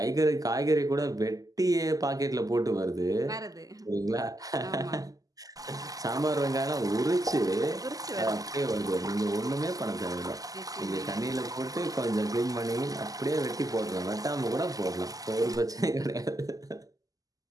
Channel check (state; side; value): late; left; 0.17 ms